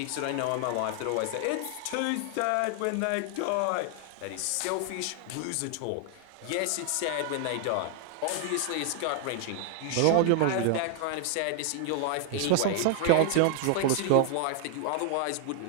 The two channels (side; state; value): both; different; correlation 0.00